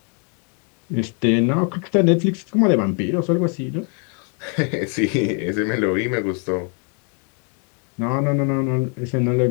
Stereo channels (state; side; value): quieter; right; 39.9 dB